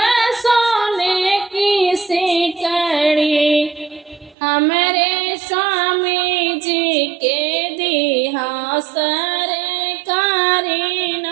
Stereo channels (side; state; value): left; drops out; at 4.4 s